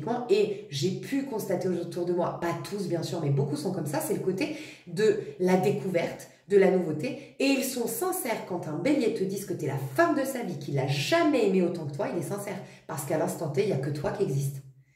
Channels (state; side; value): identical; both; correlation 1.00